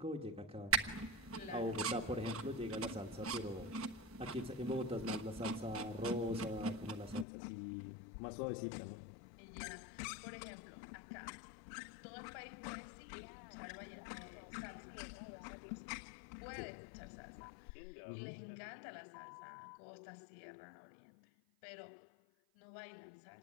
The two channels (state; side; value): drops out; right; at 7.2 s